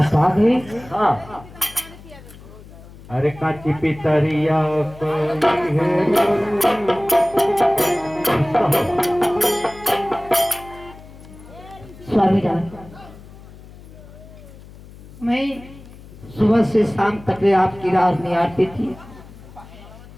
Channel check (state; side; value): noise; left; hum, 19 dB below the sound